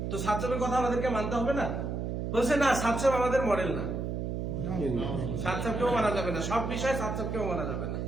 তো সাতসামের কথা আমাদেরকে মানতে হবে না? বলছে না, সাতসাম আমাদের মডেল না, সাতসামকেও মানা যাবে না, সব বিষয়ে সাতসামকেও মানা যাবে না।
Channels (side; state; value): right; noise; hum, 3 dB below the sound